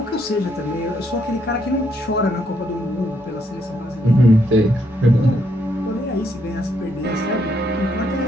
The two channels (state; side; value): normal; both; correlation 0.74